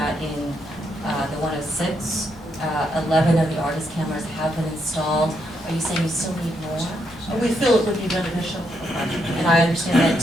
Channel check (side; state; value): both; normal; correlation 0.78